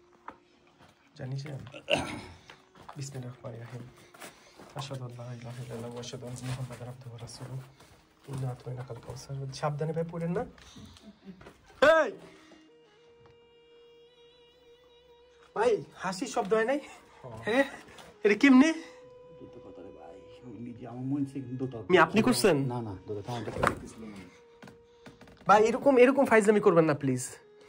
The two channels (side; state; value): both; identical; correlation 1.00